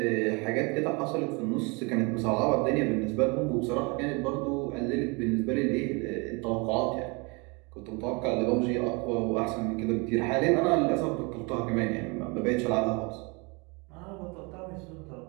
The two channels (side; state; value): left; quieter; 29.7 dB